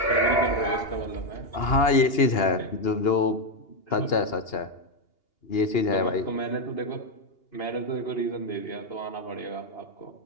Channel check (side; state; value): right; late; 2.8 ms